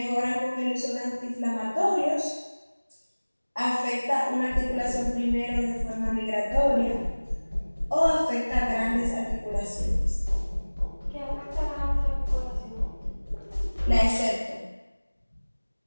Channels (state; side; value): inverted; both; correlation -1.00